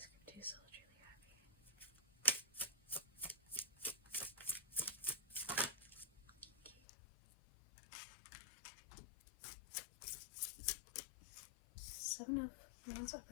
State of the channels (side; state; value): right; drops out; at 6.8 s